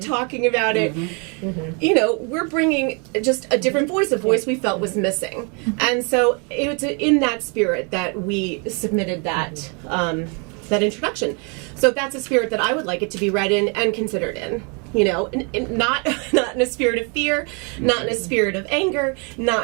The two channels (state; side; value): quieter; left; 34.7 dB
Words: about it. You know, we're bringing just a different voice, a voice we felt was missing. And so it was in that spirit that we submitted that that introduction. So that's a spirit that I would like it to be read in and considered in. You know, not in a spirit of fear, not in a spirit of anger,